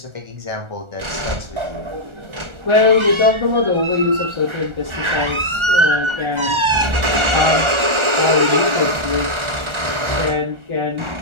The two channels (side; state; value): left; late; 1.4 ms